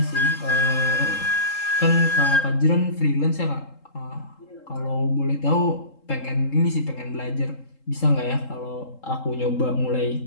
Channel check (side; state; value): right; late; 3.7 ms